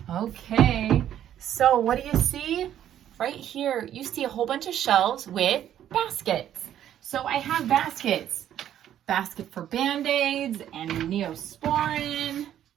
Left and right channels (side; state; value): left; quieter; 10.9 dB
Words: Okay, so what do you see? Right here, you see a whole bunch of shelves with baskets. So I have baskets. Basket for Band-Aids and Neosporin.